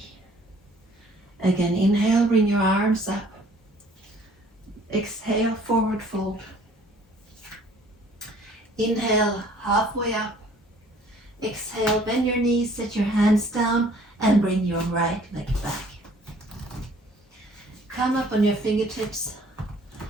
Again, inhale, bring your arms up. Exhale, forward fold. Inhale, halfway up. Exhale, bend your knees, set your hands down and bring your right leg back. Come up on your fingertips.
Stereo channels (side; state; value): both; normal; correlation 0.56